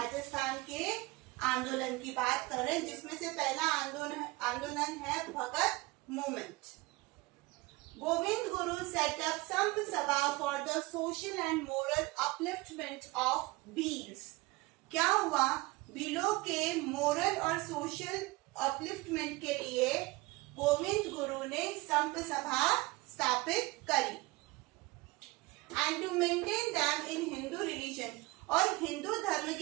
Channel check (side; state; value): left; quieter; 22.3 dB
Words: के आंदोलन की बात कर रहे हैं, जिसमें से पहला आंदोलन है भगत movement. Govind Guru set up Samp Sabha for the social and moral upliftment of Bhils. क्या हुआ? भीलों के मोरल और सोशल अपलिफ्टमेंट के लिए गोविंद गुरु ने संप सभा स्थापित करी। And to maintain them in Hindu religion, और हिंदू धर्म